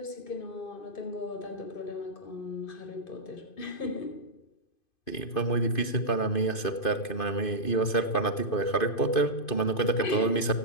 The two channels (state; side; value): late; right; 2.5 ms